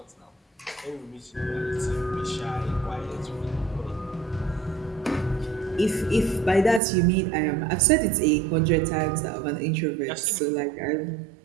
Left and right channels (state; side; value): drops out; left; at 6.8 s